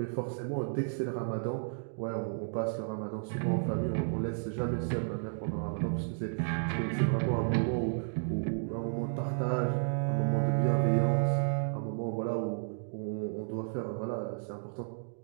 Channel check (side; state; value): left; silent; digital silence